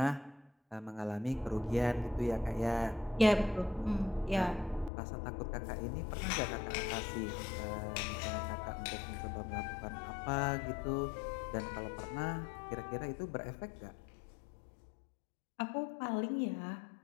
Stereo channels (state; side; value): drops out; right; at 4.9 s